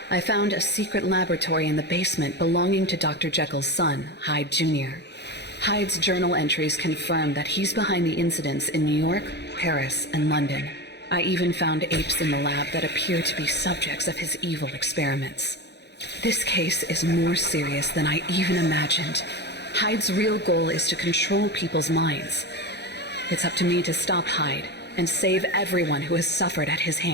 I found a secret laboratory in the basement belonging to Dr. Jekyll's son, Hyde Jr. Hyde's journal entries confirm that he's behind the incidents in New York, Paris, and London. I even found apes in the lab that appear to be subjects of his evil experiments. This case is more serious than I even imagined. Hyde's real goal is to control people's minds. It's up to me to stop Hyde and save everyone who has suffered at his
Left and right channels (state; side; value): late; right; 0.49 ms